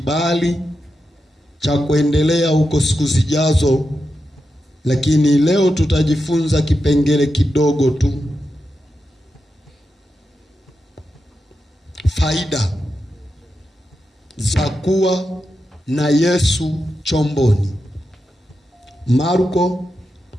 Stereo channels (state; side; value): normal; both; correlation 0.88